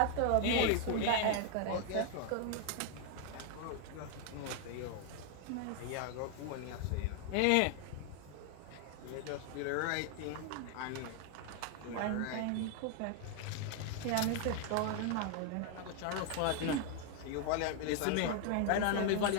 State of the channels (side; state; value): both; different; correlation 0.00